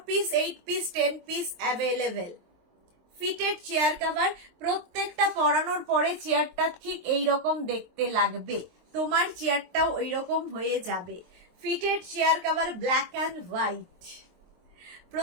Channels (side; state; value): left; late; 23 ms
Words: piece, 8 piece, 10 piece available. Fitted chair cover, প্রত্যেকটা পরানোর পরে চেয়ারটা ঠিক এইরকম দেখতে লাগবে, তোমার চেয়ারটাও ওইরকম হয়ে যাবে। Fitted chair cover black and white,